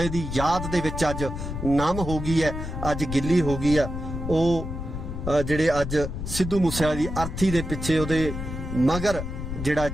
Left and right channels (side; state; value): left; noise; rumble, 6 dB below the sound